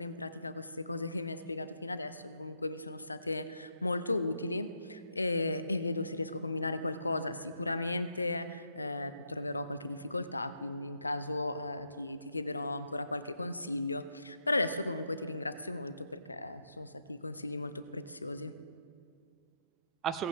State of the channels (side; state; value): both; inverted; correlation -0.79